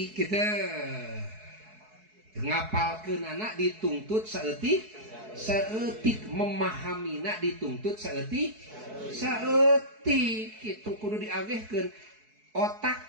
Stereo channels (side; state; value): left; late; 4.6 ms